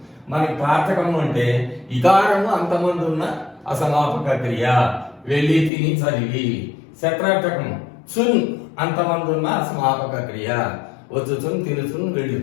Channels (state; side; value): drops out; right; at 5.7 s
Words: మనకి త్వార్థకము అంటే ఇకారము అంతమంది ఉన్న అసమాపక క్రియ, వెళ్ళి తిని చదివి. శత్రార్థకము చున్ అంతమంది ఉన్న అసమాపక క్రియ, వచ్చుచున్ తినుచున్